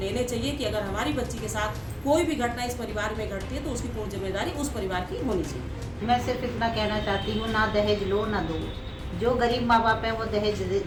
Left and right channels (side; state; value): both; identical; correlation 1.00